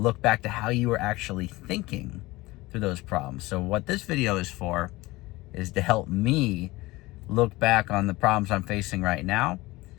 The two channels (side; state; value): right; quieter; 20.5 dB